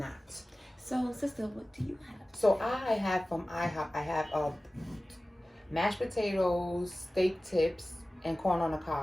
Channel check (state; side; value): normal; both; correlation 0.97